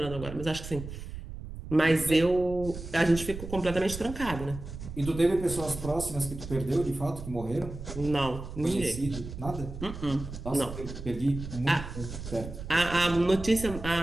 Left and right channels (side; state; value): right; noise; rumble, 10 dB below the sound